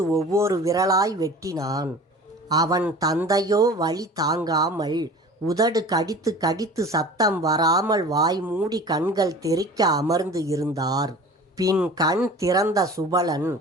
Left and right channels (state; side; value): normal; both; correlation 0.40